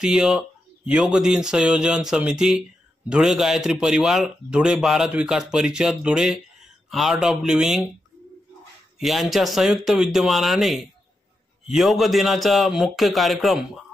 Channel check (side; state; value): both; normal; correlation 0.87